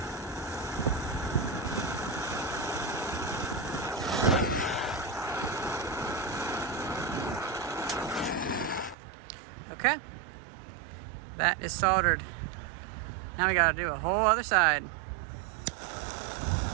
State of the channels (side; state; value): left; drops out; at 9.0 s